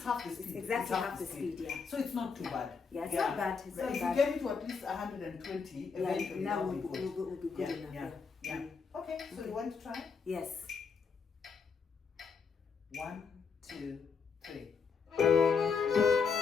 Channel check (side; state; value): right; quieter; 5.5 dB